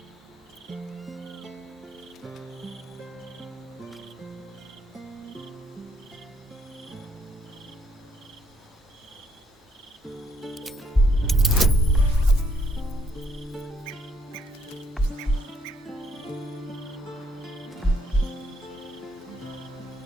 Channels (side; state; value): both; normal; correlation 0.70